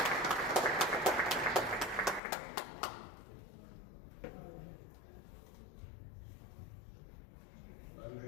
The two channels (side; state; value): right; drops out; at 2.2 s